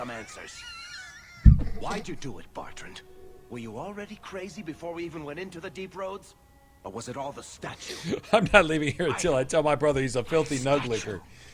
answers. Why'd you do it, Bartrand? Were you already crazy before we even went into the deep roads? Or was it all the statue? I'm not leaving here until I tell my brother he's a filthy nuglicker.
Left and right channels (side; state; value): both; identical; correlation 1.00